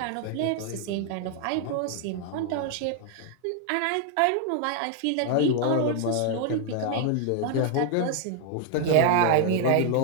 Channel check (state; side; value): different; both; correlation 0.00